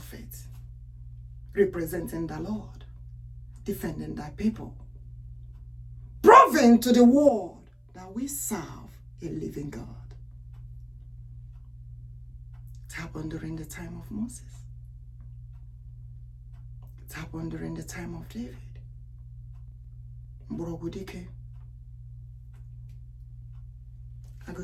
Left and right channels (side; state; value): both; identical; correlation 1.00